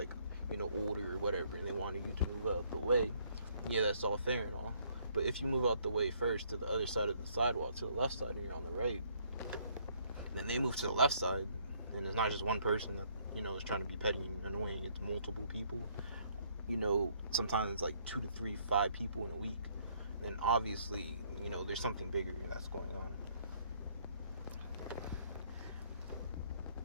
older or whatever, and they wanted you to move out the way. Yeah, that's all fair and all. But if you move out the way first to the other side of the sidewalk, to the left side, and you're on the right, then they move to the left side, and it's not just one person that, is trying to be petty and annoying. It's multiple people. Sometimes it's like 2 to 3, 5 people in a week. Then obviously, there's something bigger that's going on.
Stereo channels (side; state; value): both; inverted; correlation -0.66